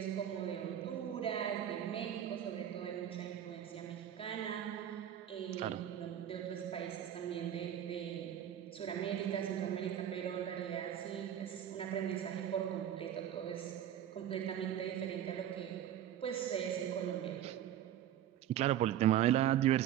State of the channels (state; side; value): quieter; left; 10.8 dB